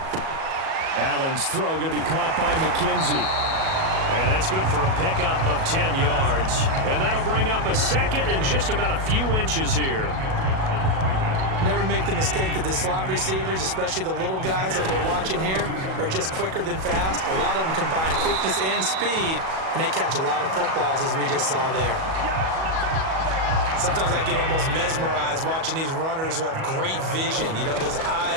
Allen's throw going to be caught by McKenzie. And that's good for a pickup of 10 yards. And that'll bring up a second and just about a few inches here. Never make the mistake that the slot receivers, especially the little guys like we're watching here, are just quicker than fast. A lot of them combine quickness and speed, and they catch a lot of footballs, as we just saw there. Sometimes I get almost mesmerized watching these runners who have great vision. You know, those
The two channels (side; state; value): left; late; 37 ms